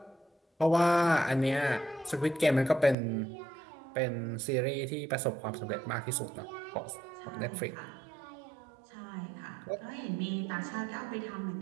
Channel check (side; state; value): left; drops out; at 3.0 s